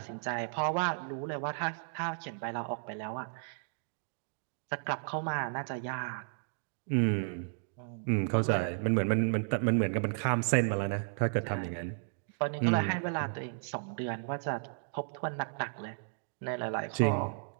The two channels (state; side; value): silent; left; digital silence